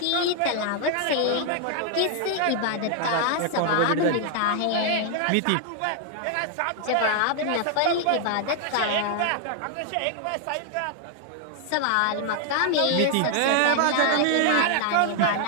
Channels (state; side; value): different; both; correlation 0.00